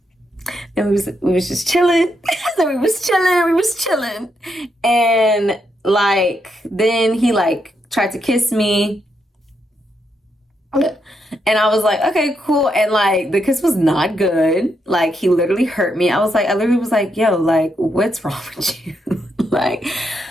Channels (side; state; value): both; normal; correlation 0.80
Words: And we was just chilling. So we was chilling. And like, then he like tried to kiss me. And I was like, okay, cool. And like, the kiss was not good. Like, he literally hurt me. I literally was like, yo, like, what's wrong with you? Like,